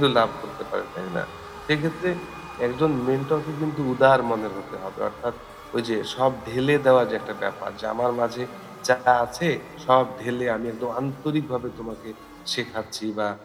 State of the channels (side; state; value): both; identical; correlation 1.00